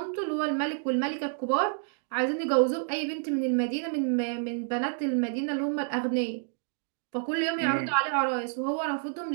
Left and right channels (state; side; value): silent; left; digital silence